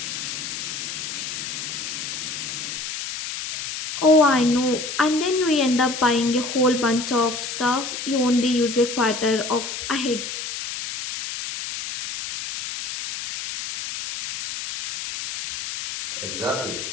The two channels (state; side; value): noise; left; hiss, 6 dB below the sound